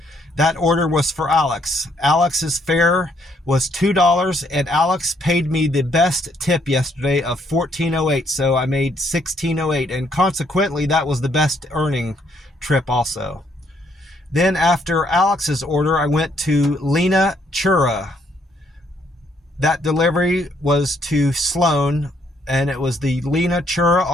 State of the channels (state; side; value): normal; both; correlation 0.70